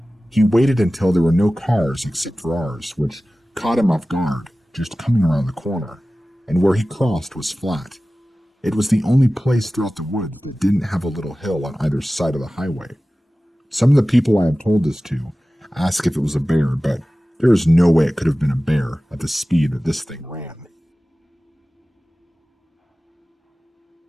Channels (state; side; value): normal; both; correlation 0.96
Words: He waited until there were no cars except for ours, which caught him off guard, just coming around the corner. and where he crossed was flat. It was the only place throughout the wood that didn't have a little hill on either side of the highway. Some of the people I have told this to ask if it was a bear, but there is no way it could have been a bear at the speed that this thing ran.